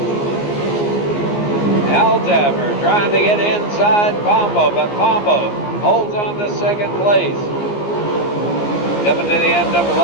Altaffer trying to get inside Pombo, but Pombo holds on to second place. Coming to the end of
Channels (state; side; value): late; right; 14 ms